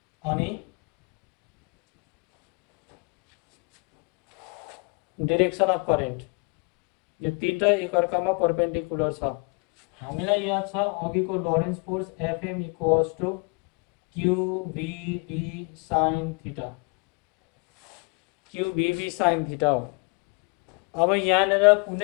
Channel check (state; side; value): quieter; right; 34.3 dB